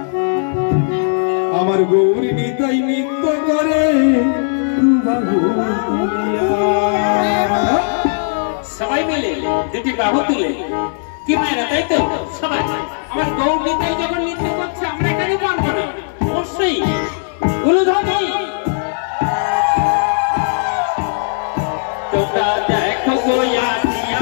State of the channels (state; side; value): silent; right; digital silence